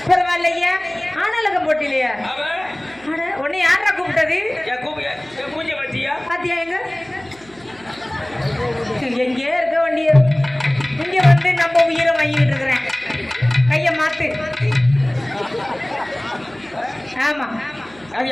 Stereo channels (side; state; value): right; noise; hum, 26 dB below the sound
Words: பரவாயில்லையா? ஆனாலக போட்டிலையா? உன்னை யாரா கூப்பிட்டது? மூஞ்ச பாத்தியா? பாத்தியா எங்க எங்கே இருக்க வண்டிய இங்க வந்து நம்ம உயிரை வாங்கிட்டு இருக்கிறேன். கைய மாத்து. ஆமா அது